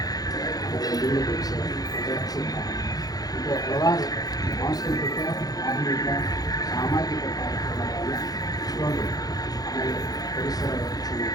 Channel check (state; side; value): late; right; 0.18 ms